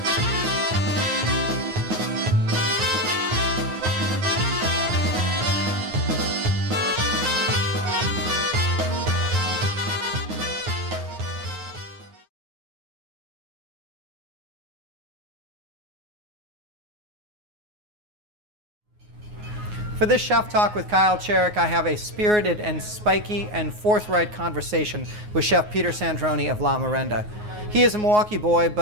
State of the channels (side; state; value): left; late; 9.5 ms